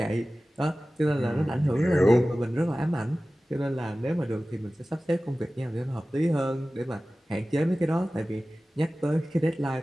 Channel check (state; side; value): normal; both; correlation 0.97